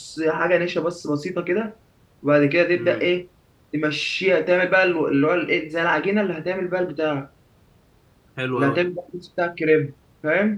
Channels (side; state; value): both; identical; correlation 1.00